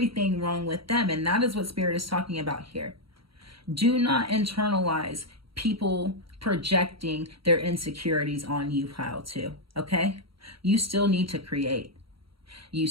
wrong with them. And that is what Spirit is talking about here. Do not internalize people projecting their insecurities on you, pile two, okay? You still need to create. You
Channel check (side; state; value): left; late; 0.75 ms